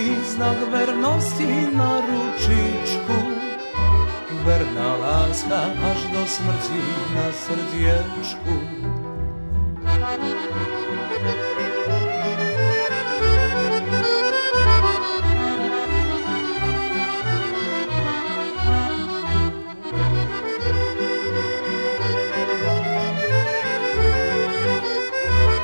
znak vernosti na ručičku. Verná láska až do smrti na srdiečku.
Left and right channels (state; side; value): inverted; both; correlation -1.00